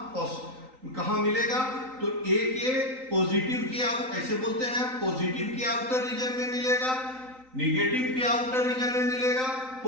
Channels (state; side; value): late; left; 3.9 ms